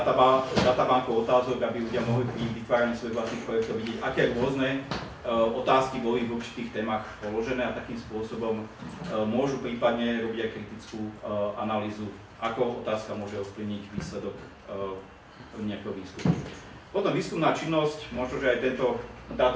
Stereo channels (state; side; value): identical; both; correlation 1.00